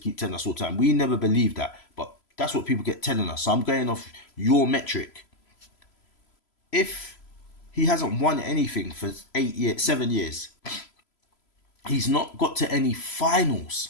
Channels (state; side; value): late; right; 3.0 ms